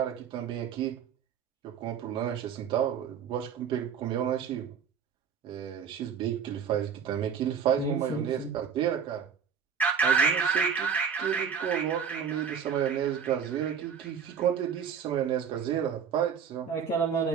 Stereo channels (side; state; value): left; quieter; 7.2 dB